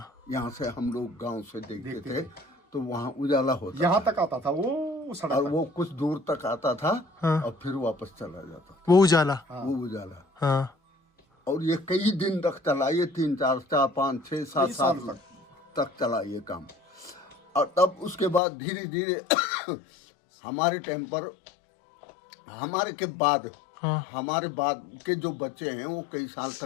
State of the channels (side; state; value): right; drops out; at 18.4 s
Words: यहाँ से हम लोग गांव से देखते थे तो वहाँ उजाला होता यहाँ था। तक आता था वो सड़क और तक। वो कुछ दूर तक आता था और फिर वापस चला जाता वो उजाला। था वो उजाला। हाँ और ये कई दिन तक चला, ये 3, 4, 5, 6, 7 साल तक चला ये काम। और तब उसके बाद धीरे धीरे हमारे टाइम पर हमारे के बाद हाँ। हमारे बाद के जो बच्चे हैं वो कई साल